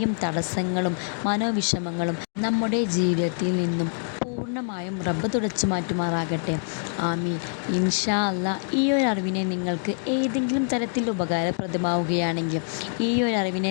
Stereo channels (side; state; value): right; silent; digital silence